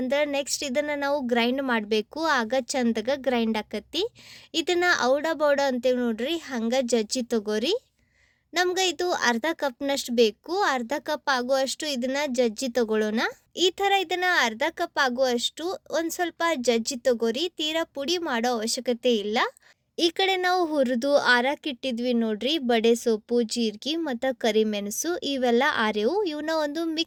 ನೆಕ್ಸ್ಟ್ ಇದನ್ನು ನಾವು ಗ್ರೈಂಡ್ ಮಾಡಬೇಕು. ಆಗ ಚಂದಾಗ ಗ್ರೈಂಡ್ ಆಕತಿ. ಇದನ್ನು ಔಡ ಬೌಡ ಅಂತೇಳಿ ನೋಡ್ರಿ ಹಂಗೆ ಜಜ್ಜಿ ತಗೋರಿ. ನಮ್ಗೆ ಇದು ಅರ್ಧ ಕಪ್ನಷ್ಟು ಬೇಕು. ಅರ್ಧ ಕಪ್ ಆಗುವಷ್ಟು ಇದನ್ನು ಜಜ್ಜಿ ತಗೊಳ್ಳೋಣ. ಈ ಥರ ಇದನ್ನು ಅರ್ಧ ಕಪ್ ಆಗುವಷ್ಟು ಒಂದು ಸ್ವಲ್ಪ ಜಜ್ಜಿ ತಗೋರಿ. ತೀರಾ ಪುಡಿ ಮಾಡೋ ಅವಶ್ಯಕತೆ ಇಲ್ಲ. ಈ ಕಡೆ ನಾವು ಹುರಿದು ಆರಾಕಿಟ್ಟಿದ್ವಿ ನೋಡ್ರಿ ಬಡೆ ಸೊಪ್ಪು, ಜೀರಿಗೆ ಮತ್ತು ಕರಿಮೆಣಸು ಇವೆಲ್ಲ ಆರೆವು. ಇವನ್ನ ಒಂದು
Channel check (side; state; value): both; identical; correlation 1.00